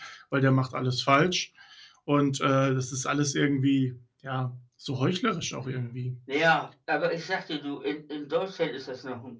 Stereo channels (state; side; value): identical; both; correlation 1.00